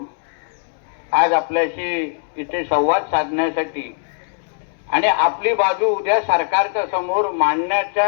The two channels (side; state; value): right; silent; digital silence